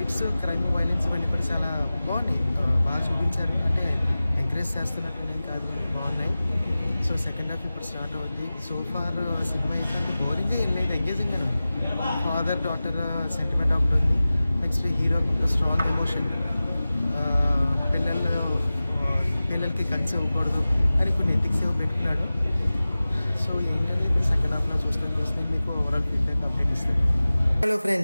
క్రైమ్, వైలెన్స్ ఇవన్నీ కూడా చాలా బాగున్నాయి, బాగా చూపించారు. అంటే ఎంకరేజ్ చేస్తున్నట్టు కాదు, బాగున్నాయి. సో సెకండ్ హాఫ్ ఇప్పుడు స్టార్ట్ అవుతుంది. సో ఫార్ సినిమా అయితే బోరింగ్గా వెళ్ళలేదు, ఎంగేజింగ్గానే ఉంది. ఫాదర్ డాటర్ సెంటిమెంట్ ఒకటి ఉంది. నెక్స్ట్ హీరో స్ట్రాంగ్ ఎమోషన్, పిల్లలకి గన్స్ ఇవ్వకూడదు అని కొన్ని ఎథిక్స్ ఏవో పెట్టుకున్నాడు. సో ఏంటంటే సెకండ్ హాఫ్లో చూస్తే మీకు ఓవరాల్ ఫీడ్బ్యాక్ అప్డేట్ ఇస్తాను. హలో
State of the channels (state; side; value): inverted; both; correlation -0.96